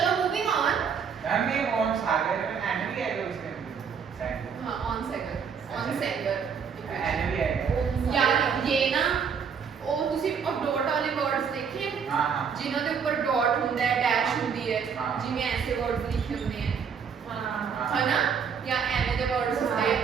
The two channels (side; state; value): left; quieter; 6.6 dB